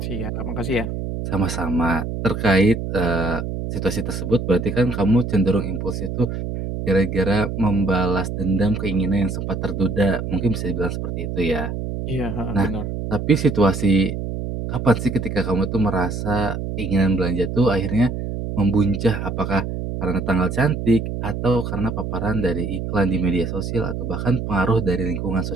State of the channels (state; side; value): noise; right; hum, 4 dB below the sound